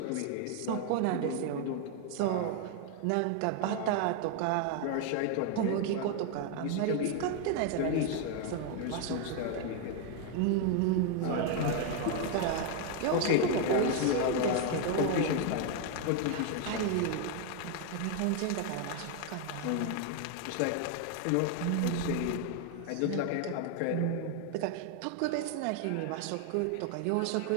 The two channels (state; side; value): different; both; correlation 0.01